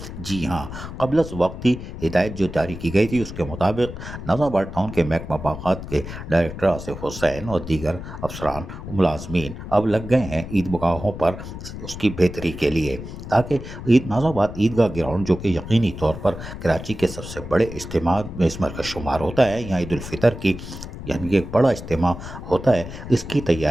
जी हाँ, क़ब्ल वक्त ही हिदायत जो जारी की गई थी उसके मुताबिक नाज़िमाबाद टाउन के महकमा बाग़ात के डायरेक्टर आसिफ हुसैन और दीगर अफसरान मुलाजमीन अब लग गए हैं ईदगाहों पर उसकी बेहतरी के लिए, ताकि नाज़िमाबाद ईदगाह ग्राउंड, जो कि यकीनी तौर पर कराची के सबसे बड़े इज्तिमा में इसमें का शुमार होता है, यहाँ ईद उल फितर की यानी कि एक बड़ा इज्तिमा होता है, इसकी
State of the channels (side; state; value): left; noise; rumble, 10 dB below the sound